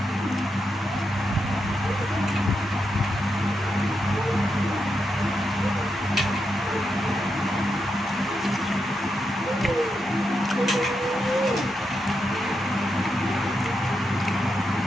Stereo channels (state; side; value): normal; both; correlation 0.84